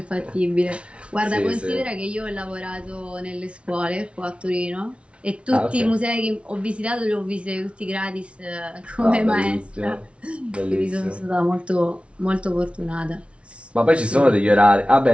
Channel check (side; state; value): left; late; 0.060 ms